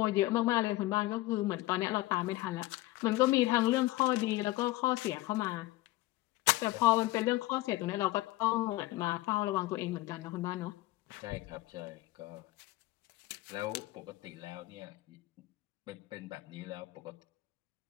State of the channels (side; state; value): right; quieter; 18.7 dB